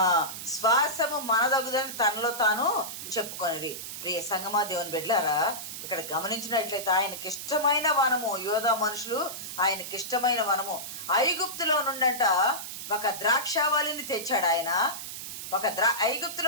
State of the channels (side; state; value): right; noise; hiss, 8 dB below the sound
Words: తనలో తాను చెప్పుకొనిరి. ప్రియ సంగమా, దేవుని బిడ్డలారా, ఇక్కడ గమనించినట్లయితే ఆయనకి ఇష్టమైన వనము, యోధా మనుషులు ఆయనకి ఇష్టమైన వనము. ఐగుప్తులో నుండంట ఒక ద్రాక్షావళిని తెచ్చాడు ఆయన.